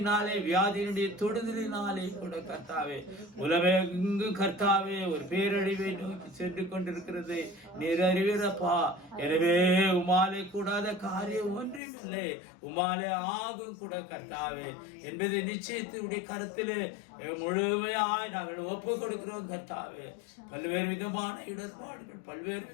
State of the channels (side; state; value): right; drops out; at 11.8 s